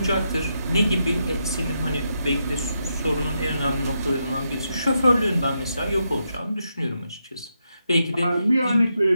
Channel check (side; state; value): both; inverted; correlation -0.83